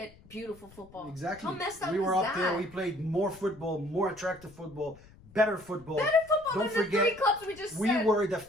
beautiful football. Exactly. How messed up we were is up that? there. We played more football, more attractive football, better football. Better football Don't than forget, the 3 clubs we just we said. were the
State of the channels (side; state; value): left; noise; rumble, 24 dB below the sound